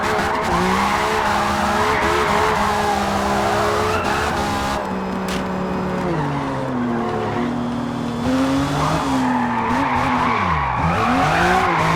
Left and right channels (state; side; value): identical; both; correlation 1.00